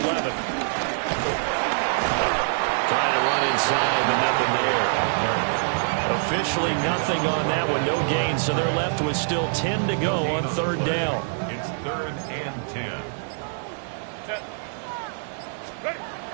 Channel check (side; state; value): left; silent; digital silence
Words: 11. Trying to run inside, but nothing there. Officially nothing on that one, no gain, so they're left with still 10 to go on 3rd down. It's 3rd and 10.